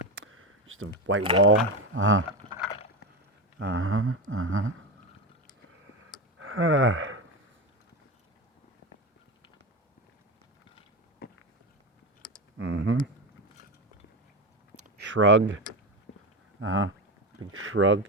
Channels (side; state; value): both; normal; correlation 0.17